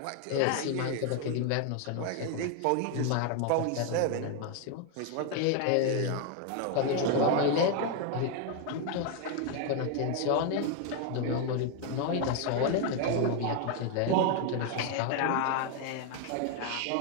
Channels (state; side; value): different; both; correlation 0.00